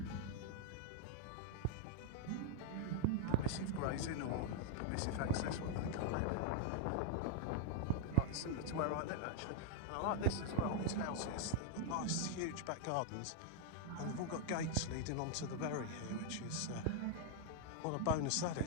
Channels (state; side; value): different; both; correlation -0.01